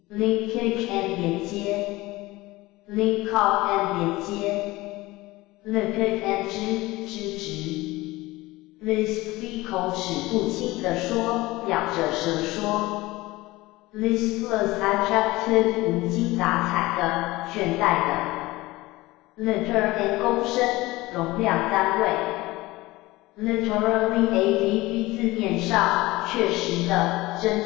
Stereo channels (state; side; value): quieter; right; 19.7 dB